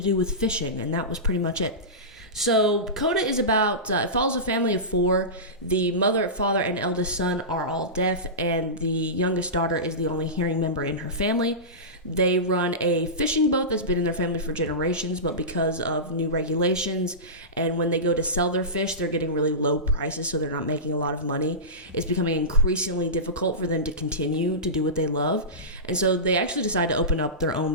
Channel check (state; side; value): normal; both; correlation -0.19